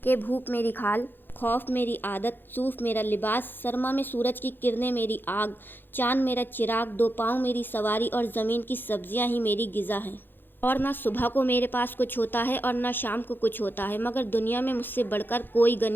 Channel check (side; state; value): right; late; 0.096 ms